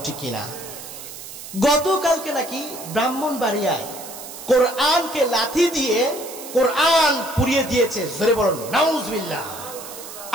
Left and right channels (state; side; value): noise; right; hiss, 13 dB below the sound